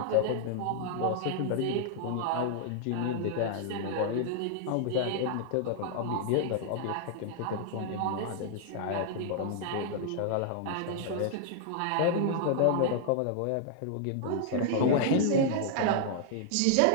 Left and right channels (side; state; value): both; different; correlation -0.01